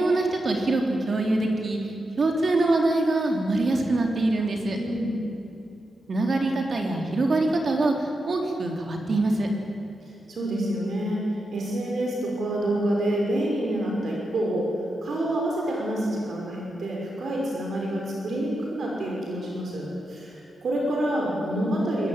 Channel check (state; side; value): normal; both; correlation 0.87